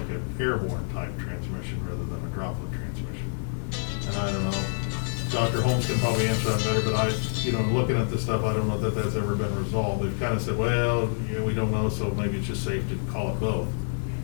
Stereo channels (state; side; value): silent; right; 60 dB below the other